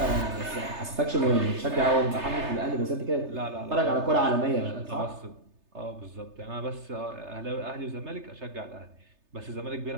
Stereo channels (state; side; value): late; left; 3.3 ms